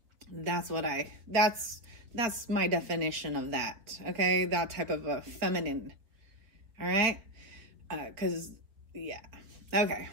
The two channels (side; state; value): left; late; 4.0 ms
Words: that's my definition of that. Okay, that type of a feminine. All right, because yeah, okay.